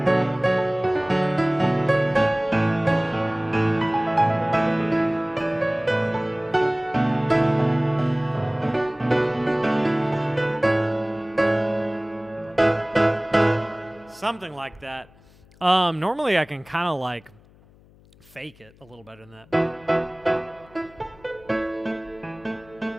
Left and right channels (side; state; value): left; noise; hum, 27 dB below the sound